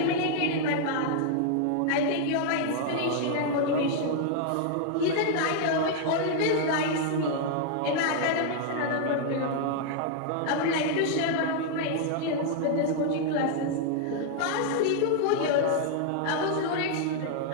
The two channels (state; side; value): different; both; correlation -0.01